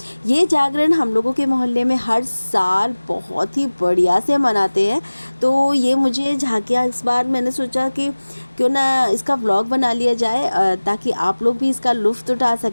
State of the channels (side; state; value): both; inverted; correlation -1.00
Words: ये जागरण हम लोगों के मोहल्ले में हर साल बहुत ही बढ़िया से मनाते हैं। तो ये मुझे झांकियाँ इस बार मैंने सोचा कि क्यों ना इसका व्लॉग बना लिया जाए, ताकि आप लोग भी इसका लुत्फ़ उठा